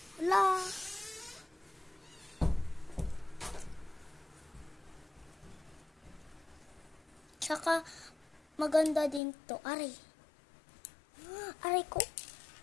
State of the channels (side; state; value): right; drops out; at 9.2 s